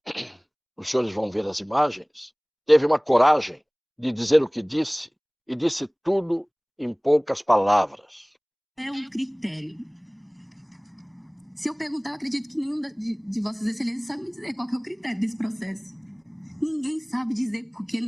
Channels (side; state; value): both; identical; correlation 1.00